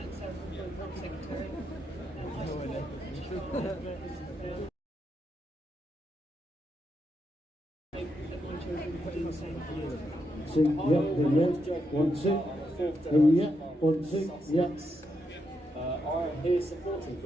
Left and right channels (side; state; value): both; normal; correlation 0.82